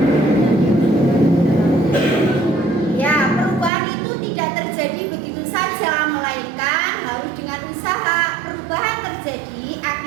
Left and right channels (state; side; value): drops out; left; at 3.7 s